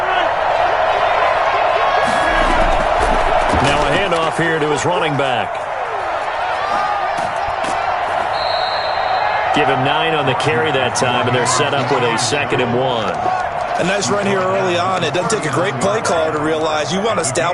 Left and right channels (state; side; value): identical; both; correlation 1.00